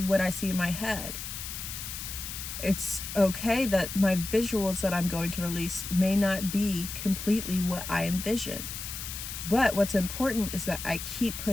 what I see in my head. It's okay that my visuals that I'm going to release may not be completely what I envision. But what's important is that I keep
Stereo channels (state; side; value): noise; left; hiss, 7 dB below the sound